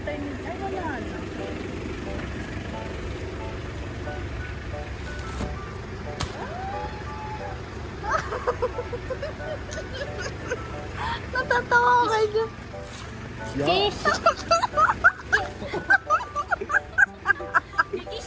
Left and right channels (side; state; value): both; identical; correlation 1.00